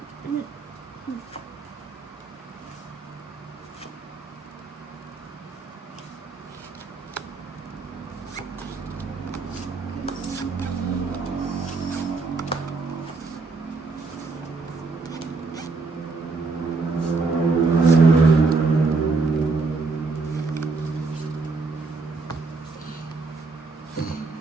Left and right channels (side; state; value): left; quieter; 4.0 dB